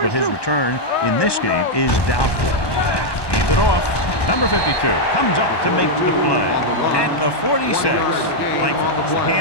his return in this game is doubtful. Hands it off. Number 52 comes up to make the play at the 46. Langford puts the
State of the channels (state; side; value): late; right; 1.1 ms